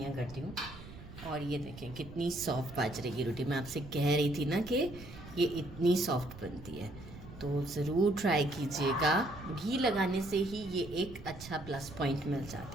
करती हूँ। और ये देखें कितनी सॉफ्ट बाजरे की रोटी, मैं आपसे कह रही थी ना कि ये इतनी सॉफ्ट बनती है। तो ज़रूर ट्राई कीजिएगा। घी लगाने से ही ये एक अच्छा प्लस पॉइंट मिल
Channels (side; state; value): right; noise; rumble, 15 dB below the sound